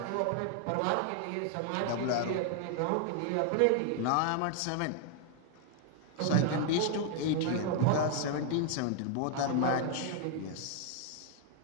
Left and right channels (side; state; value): both; different; correlation 0.00